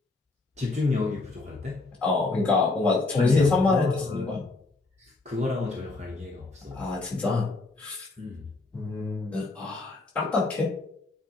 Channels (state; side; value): quieter; right; 3.4 dB